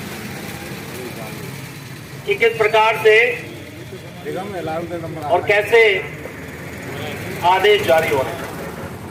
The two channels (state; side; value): identical; both; correlation 1.00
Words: कि किस प्रकार से और कैसे आदेश जारी हो रहे हैं।